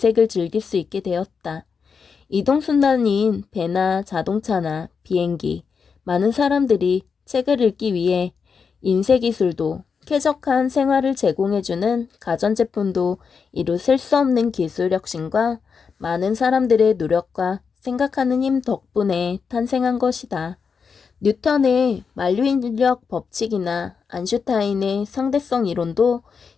즐길 수 있게 되었다. 이동수단인 배나 자동차나 비행기, 많은 사람들이 책을 읽기 위해 인쇄기술도 쾌적한 생활을 제공해주는 가전제품도 이루 셀 수 없는 기술 혁신과 많은 사람들의 노력과 생각하는 힘 덕분에 탄생한 것이다. 뉴턴의 만류인력 법칙이나 아인슈타인의 상대성 이론도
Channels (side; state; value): right; quieter; 5.8 dB